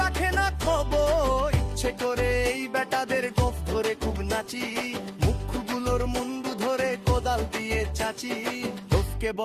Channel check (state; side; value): identical; both; correlation 1.00